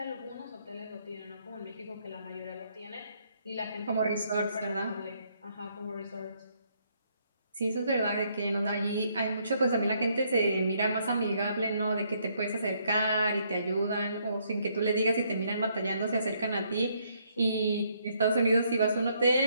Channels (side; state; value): both; inverted; correlation -0.71